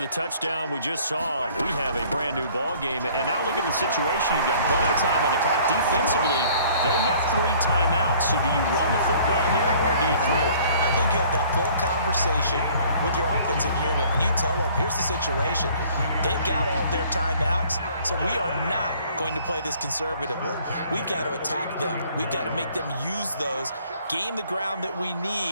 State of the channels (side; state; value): both; inverted; correlation -0.55